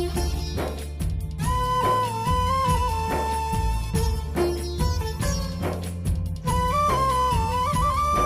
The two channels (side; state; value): both; identical; correlation 1.00